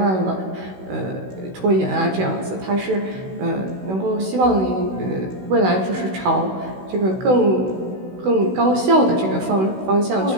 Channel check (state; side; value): late; left; 16 ms